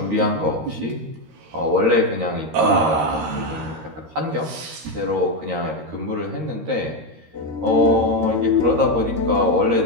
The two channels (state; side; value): late; left; 13 ms